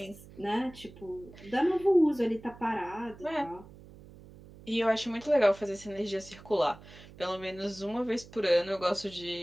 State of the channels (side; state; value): right; noise; hum, 20 dB below the sound